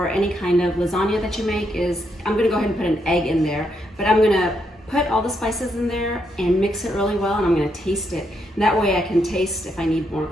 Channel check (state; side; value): normal; both; correlation 0.78